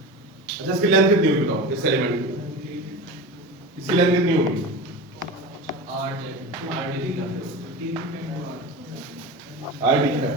अच्छा इसकी लेंथ कितनी होगी बताओ, इस एलिमेंट की इसकी लेंथ कितनी होगी, आर डी है।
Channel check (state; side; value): normal; both; correlation 0.28